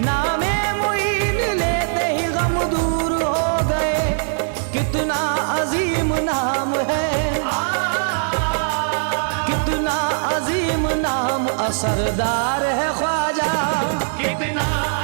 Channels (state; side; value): silent; left; digital silence